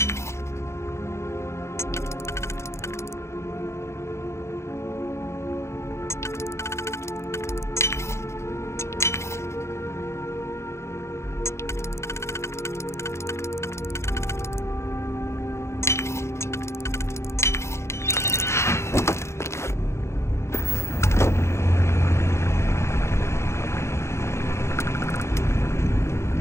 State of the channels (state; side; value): late; right; 0.13 ms